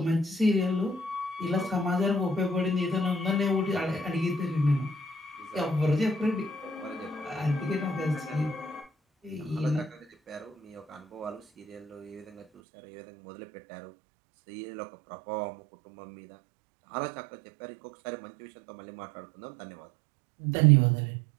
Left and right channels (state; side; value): drops out; left; at 12.5 s